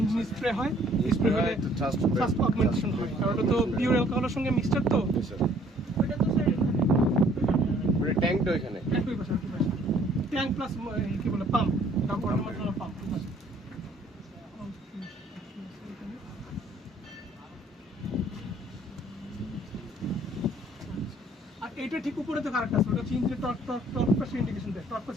স্প্রে হয়, স্প্রে হলে ফাস্ট অগমেন্টেশন হয়, কারণ ওটা তো পিওর অ্যালকোহলের সঙ্গে মিক্সচার, তো ট্যাঙ্কটা এখানে ট্যাঙ্ক প্লাস কি বলে পাম্প, ওয়াটার মেটেরিয়াল পাম্প। আর এইটা ঠিক উপরে তো কারেক্ট আছে, ওটা হচ্ছে ইঞ্জিনের টর্ক প্রেসার ইন্ডিকেশন দেয়, টর্ক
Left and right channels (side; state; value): both; normal; correlation 0.60